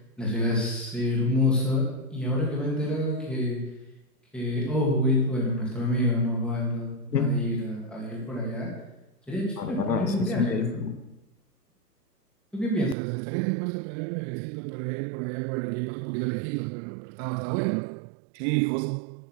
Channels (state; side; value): drops out; left; at 13.0 s